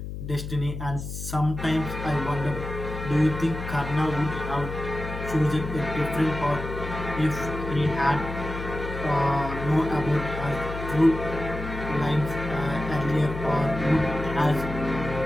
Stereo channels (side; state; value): left; noise; hum, 7 dB below the sound